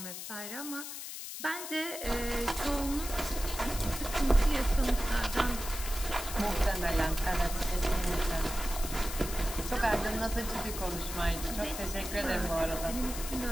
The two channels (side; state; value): left; noise; hiss, 8 dB below the sound